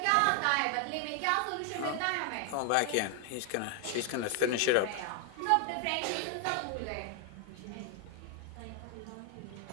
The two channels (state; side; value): different; both; correlation 0.00